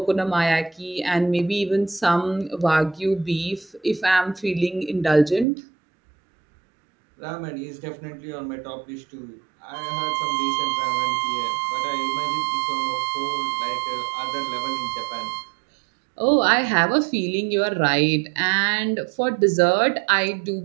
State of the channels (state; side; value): drops out; left; at 5.5 s